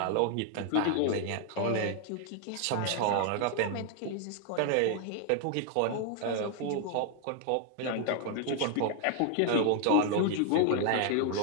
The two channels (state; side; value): different; both; correlation 0.00